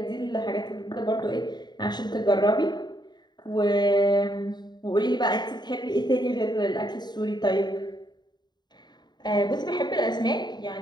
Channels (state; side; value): late; right; 0.21 ms